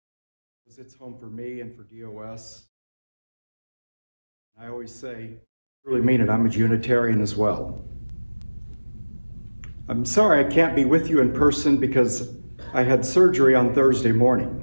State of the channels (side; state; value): both; inverted; correlation -1.00